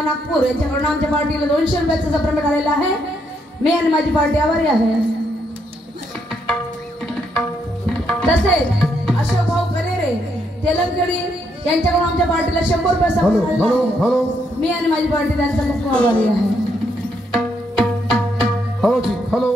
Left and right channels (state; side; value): normal; both; correlation 0.76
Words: नागपूर यांच्याकडून आमच्या पार्टीला 200 रुपयाचा पेमेंट आलेला आहे. मी आणि माझी पार्टी आभारी आहे. तसेच अशोक भाऊ करेरे तेलंगणी यांच्याकडून आमच्या पार्टीला 100 रुपयाचा हॅलो पेमेंट आलेला हॅलो आहे. हॅलो मी आणि माझी पार्टी त्यांचा खूप आभारी आहे. हॅलो जी